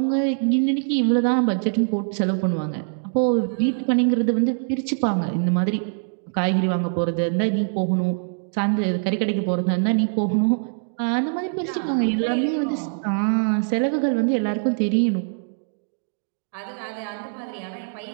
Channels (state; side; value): silent; left; digital silence